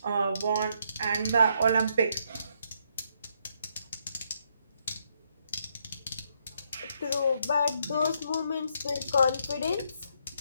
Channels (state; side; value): inverted; both; correlation -0.74